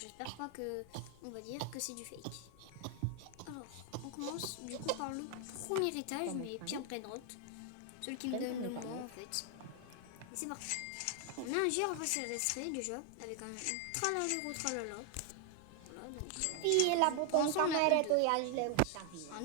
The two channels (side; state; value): both; different; correlation 0.00